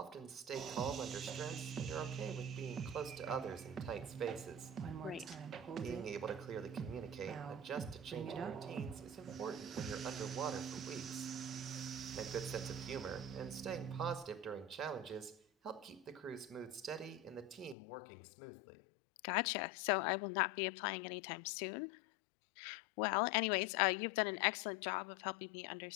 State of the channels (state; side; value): drops out; right; at 17.8 s